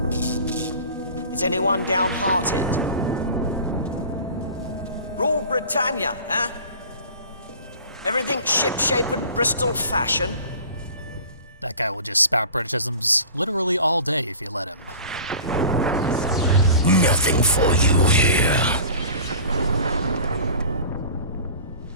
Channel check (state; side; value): inverted; both; correlation -0.41